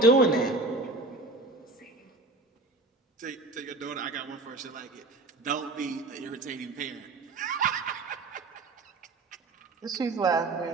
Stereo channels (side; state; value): left; quieter; 3.2 dB